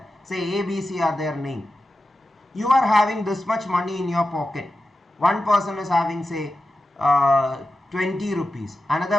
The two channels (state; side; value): normal; both; correlation 0.92